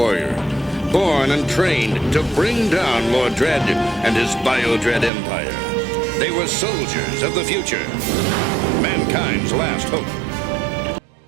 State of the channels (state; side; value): drops out; left; at 5.1 s